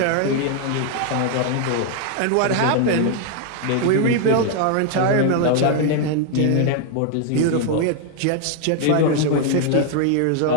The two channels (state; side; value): different; both; correlation 0.00